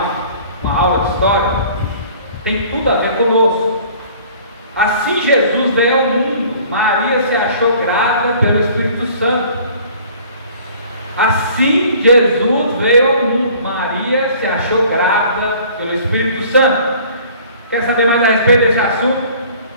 uma aula de história. Tem tudo a ver conosco. Assim Jesus veio ao mundo, Maria se achou grávida pelo Espírito Santo. Assim Jesus veio ao mundo, Maria se achou grávida pelo Espírito Santo. Quer saber mais a respeito desse assunto?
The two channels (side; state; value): both; inverted; correlation -0.51